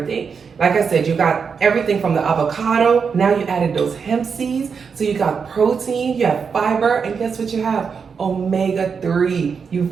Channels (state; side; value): quieter; left; 6.0 dB